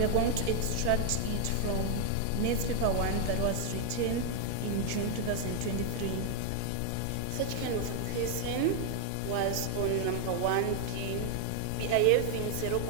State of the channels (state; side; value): different; both; correlation 0.00